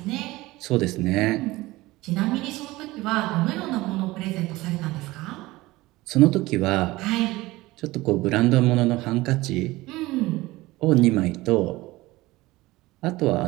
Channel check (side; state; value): left; quieter; 19.5 dB